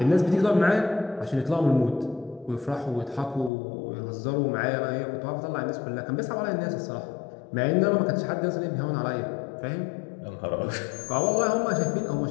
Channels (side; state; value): right; drops out; at 3.5 s